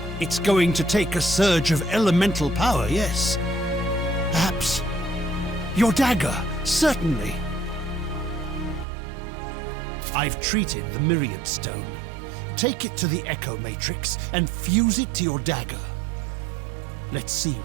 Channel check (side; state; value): left; drops out; at 8.8 s